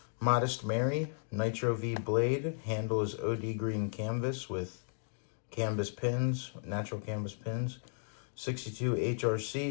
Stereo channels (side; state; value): right; silent; digital silence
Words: Modest Mary, Nitro V blade. Handle is OD green canvas with canvas pins, natural canvas pins. 62